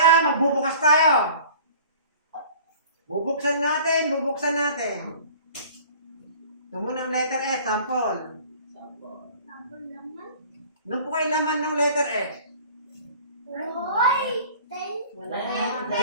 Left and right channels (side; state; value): both; inverted; correlation -0.47